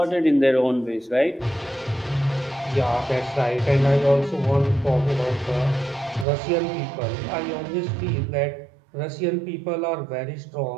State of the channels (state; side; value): drops out; left; at 6.2 s